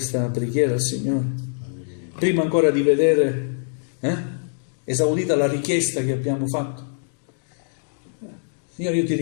preghiera al Signore? Prima ancora di vedere esaudita la richiesta che abbiamo fatto. Signore, io ti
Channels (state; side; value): silent; right; digital silence